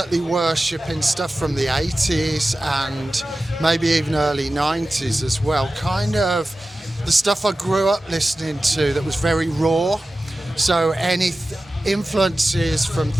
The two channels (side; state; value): both; normal; correlation 0.95